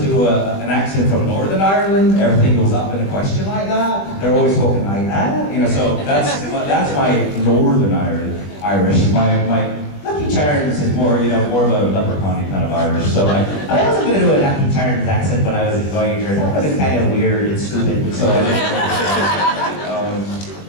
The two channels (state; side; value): late; right; 20 ms